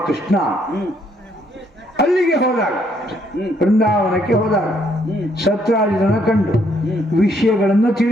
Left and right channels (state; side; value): normal; both; correlation 0.70